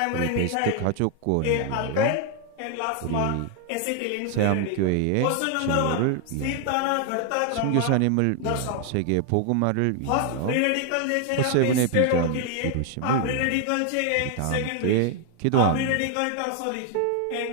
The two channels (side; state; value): both; different; correlation 0.00